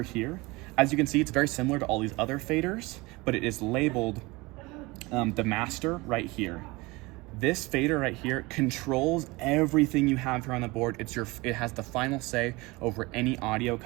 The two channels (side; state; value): left; quieter; 23.3 dB